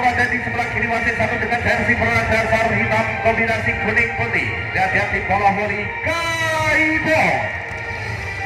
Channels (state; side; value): identical; both; correlation 1.00